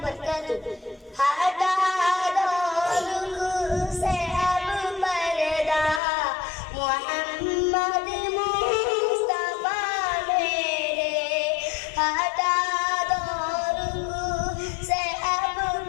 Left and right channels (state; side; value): drops out; right; at 6.0 s